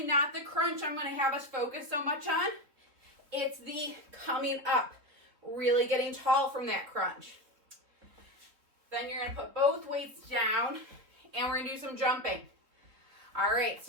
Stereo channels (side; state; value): left; late; 3.8 ms